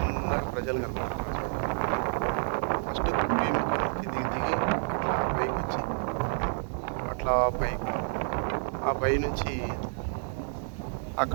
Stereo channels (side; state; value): left; silent; 58 dB below the other